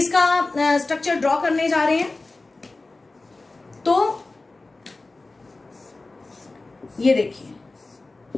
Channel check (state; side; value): quieter; right; 3.3 dB